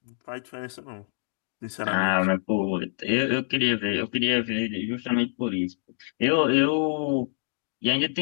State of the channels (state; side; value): silent; right; digital silence